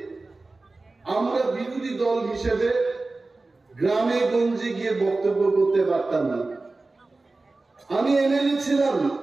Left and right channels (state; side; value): quieter; left; 3.4 dB